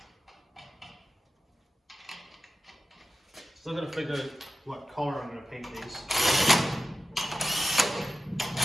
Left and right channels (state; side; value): normal; both; correlation 0.92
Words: Still gotta figure out what color I'm gonna paint these.